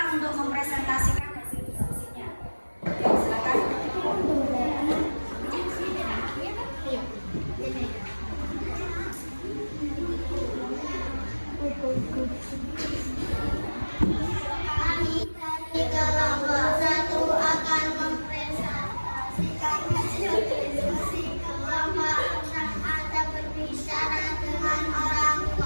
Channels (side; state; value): both; inverted; correlation -1.00